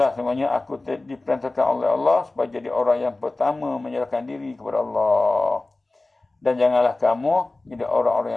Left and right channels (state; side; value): quieter; right; 3.0 dB